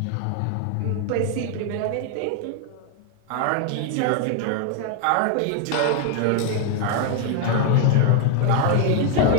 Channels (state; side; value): different; both; correlation 0.00